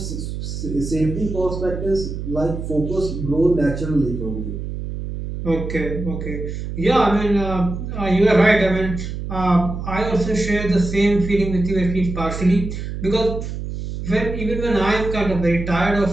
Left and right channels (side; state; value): right; noise; hum, 6 dB below the sound